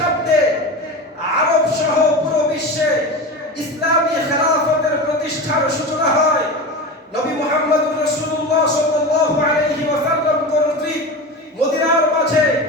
আরব সহ পুরো বিশ্বে ইসলামী খেলাফতের প্রতিষ্ঠার সূচনা হয়। নবী মুহাম্মদুর রাসূলুল্লাহ সাল্লাল্লাহু আলাইহি ওয়াসাল্লাম কর্তৃক মদিনার মাঝে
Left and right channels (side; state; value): both; normal; correlation 0.27